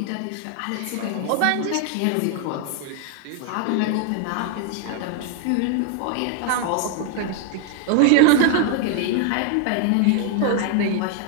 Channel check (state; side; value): different; both; correlation 0.00